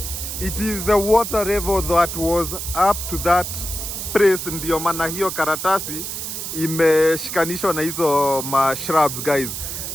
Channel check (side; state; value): right; noise; hiss, 6 dB below the sound